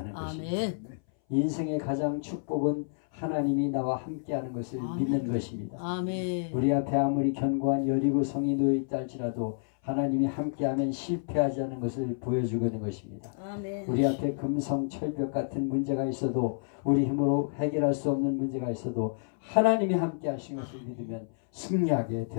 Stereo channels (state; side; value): silent; right; 58 dB below the other